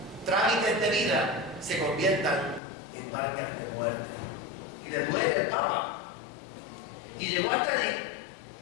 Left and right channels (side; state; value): right; drops out; at 2.6 s